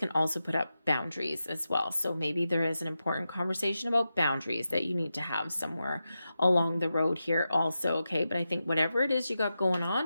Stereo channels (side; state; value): both; inverted; correlation -0.90